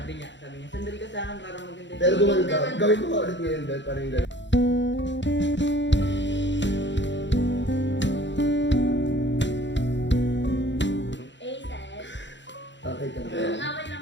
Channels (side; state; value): right; late; 0.53 ms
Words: niya, sandali ka sa akin para maganda yung Pero picture. gumano ka. Gawin mo ka ulit ngayon, Bet. Parang yung ganun. Aces. Okay ka lang. Okay lang